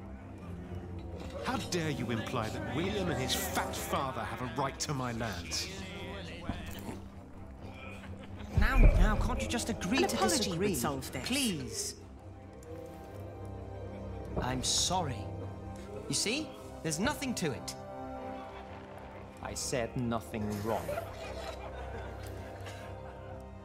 How dare you imply that William and his fat father have a right to my lands? Now, can't you just agree An to apology disagree? would solve this. Please. I'm sorry. You see? There's nothing to it. I said nothing wrong.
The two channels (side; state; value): both; identical; correlation 1.00